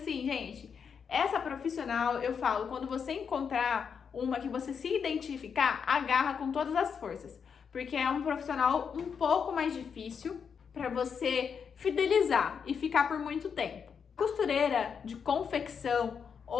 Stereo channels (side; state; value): right; quieter; 6.7 dB